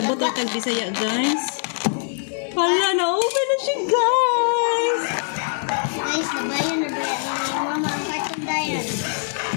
ang tag-Bisaya guys. Hala, na-open na siya guys. Guys, nabayan na ba yan ni mama ang cartoon dayan?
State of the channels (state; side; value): silent; right; 64 dB below the other